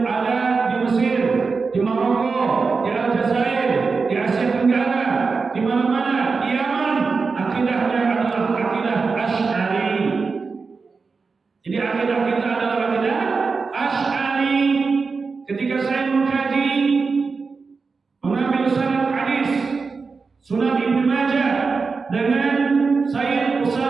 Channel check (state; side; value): quieter; left; 4.6 dB